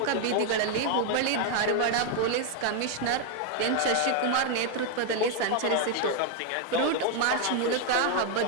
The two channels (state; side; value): different; both; correlation 0.01